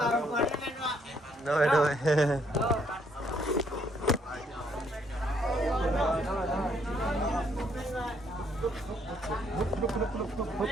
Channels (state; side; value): normal; both; correlation 0.69